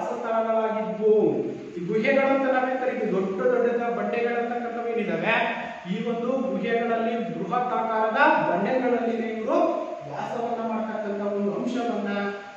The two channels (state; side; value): identical; both; correlation 1.00